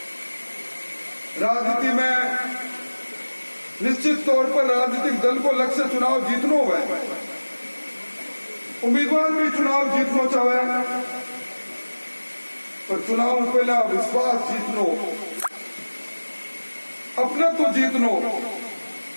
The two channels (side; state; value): both; inverted; correlation -1.00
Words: राजनीति में निश्चित तौर पर राजनीतिक दल को लक्ष्य चुनाव जीतनो है, उम्मीदवार भी चुनाव जीतनो चाहे, पर चुनाव पहला विश्वास जीतनो, अपना तो जीतनो,